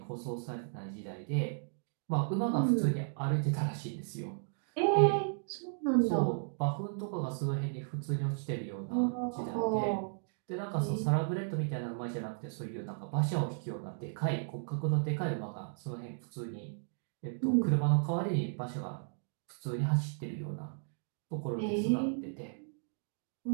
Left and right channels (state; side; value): silent; left; digital silence